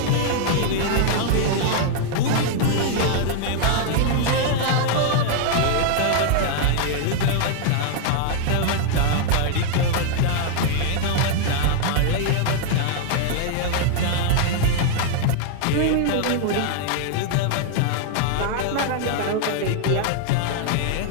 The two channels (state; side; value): different; both; correlation 0.00